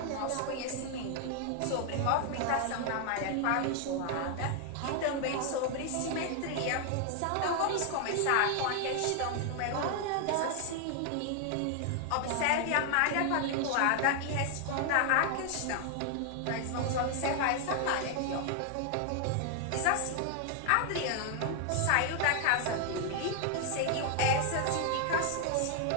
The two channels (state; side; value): different; both; correlation 0.00